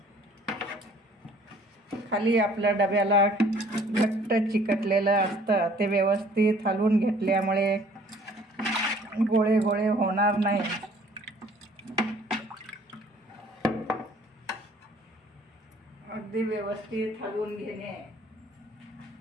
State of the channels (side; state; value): both; normal; correlation 0.56